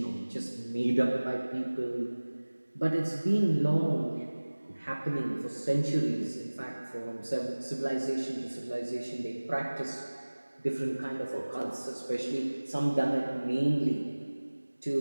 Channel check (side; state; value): both; inverted; correlation -1.00